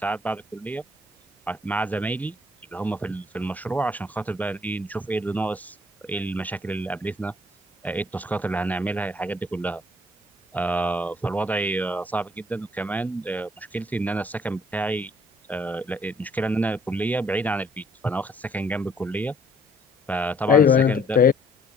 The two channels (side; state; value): both; normal; correlation 0.62